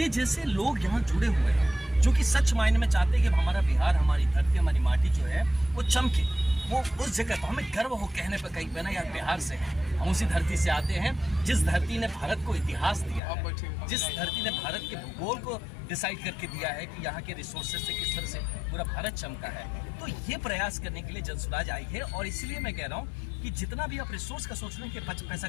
जैसे लोग यहाँ जुड़े हुए हैं जो कि सच मायने में चाहते हैं कि हमारा बिहार, हमारी धरती, हमारी माटी जो है वो चमके, वो उस जगह पर हमें गर्व हो कहने पर कहीं पे ना यार बिहार से है, हम उसी धरती से आते हैं जिस धरती ने भारत को इतिहास दिया है, जिस धरती ने भारत के भूगोल को डिसाइड करके दिया है कि यहाँ के रिसोर्सेज से किस तरह से पूरा भारत चमका है। तो ये प्रयास करने के लिए जनसुराज आई है, और इसलिए मैं कह रहा हूँ कि जितना भी आप रिसोर्स का सोच रहे हैं कि पैसा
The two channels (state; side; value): drops out; right; at 13.2 s